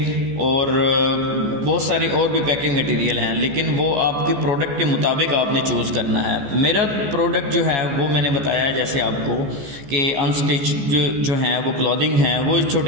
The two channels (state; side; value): late; left; 14 ms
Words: और बहुत सारे और भी पैकिंग मटेरियल हैं, लेकिन वो आपके प्रोडक्ट के मुताबिक आपने चूज़ करना है। मेरा प्रोडक्ट जो है वो मैंने बताया है जैसे आपको कि अनस्टिच जो हैं वो क्लॉथिंग हैं, वो